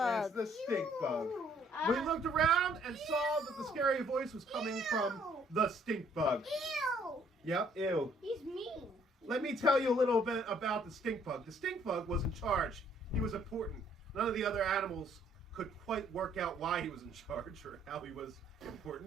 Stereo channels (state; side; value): normal; both; correlation 0.64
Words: the stink bug. We looked around and saw that the scary voice was coming from the stink bug. Ew! Yep, ew. He's mean. Let me tell you a little bit about the stink bug. The stink bug was in charge. He was important. None of the other animals could quite work out why he was in charge or how he was